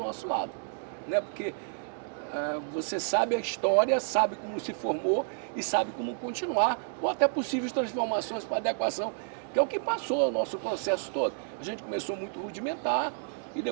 lado. Né? Porque você sabe a história, sabe como se formou e sabe como continuar, ou até possíveis transformações para adequação, que é o que passou o nosso processo todo. A gente começou muito rudimentar e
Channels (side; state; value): left; silent; digital silence